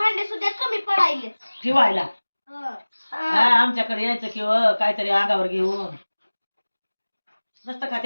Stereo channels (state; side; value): inverted; both; correlation -1.00